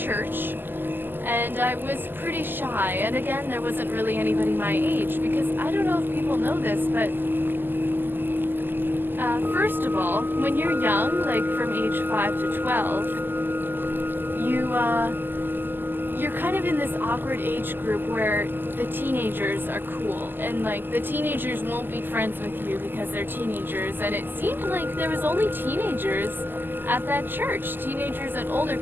and I was pretty shy, and again, there wasn't really anybody my age, because I don't know if people know this, but first of all, when you're young, like from age 5 to 12, you're kind of in this awkward age group where the teenagers are cool, and like the teenagers won't be friends with you because they're teenagers, and it seemed like there was only teenagers at that church, teenagers and older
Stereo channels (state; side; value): late; left; 0.093 ms